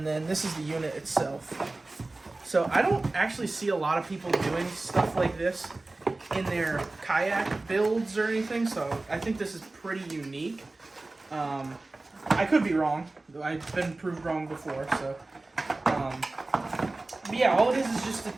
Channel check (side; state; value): left; quieter; 3.1 dB